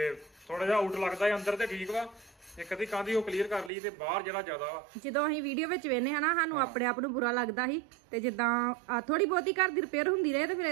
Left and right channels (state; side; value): drops out; left; at 3.7 s